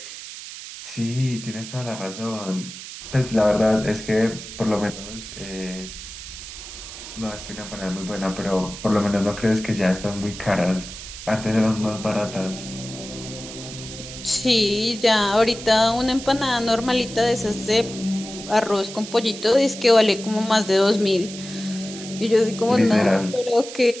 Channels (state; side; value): noise; right; hiss, 12 dB below the sound